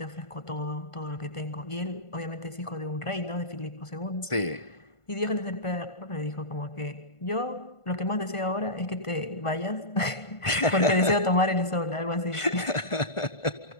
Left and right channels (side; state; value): right; late; 1.5 ms